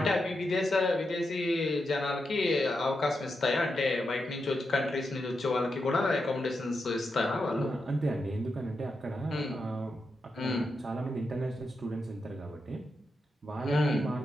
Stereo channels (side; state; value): both; normal; correlation 0.86